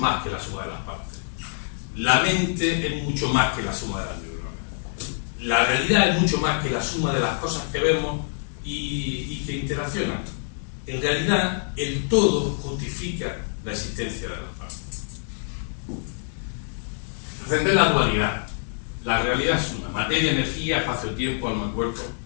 que la suma de las partes. La mente es mucho más que la suma de las neuronas. La realidad es mucho más que la suma de las cosas que vemos y que interaccionan. En realidad, el todo justifica la existencia de las partes. Entender la dualidad. La realidad es una: materia, energía, espacio-tiempo, alma-cuerpo.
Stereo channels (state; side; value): silent; right; digital silence